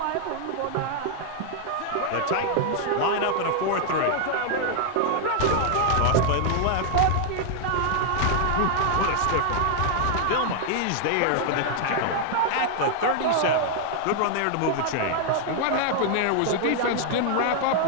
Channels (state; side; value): different; both; correlation 0.00